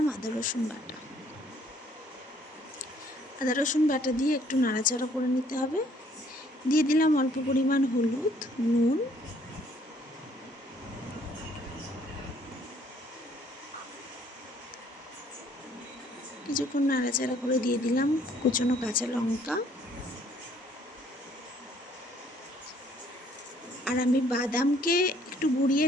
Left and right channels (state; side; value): normal; both; correlation 0.62